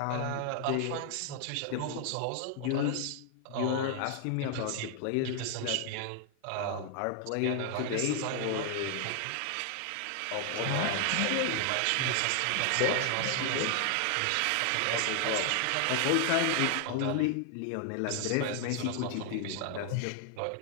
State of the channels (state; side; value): different; both; correlation 0.00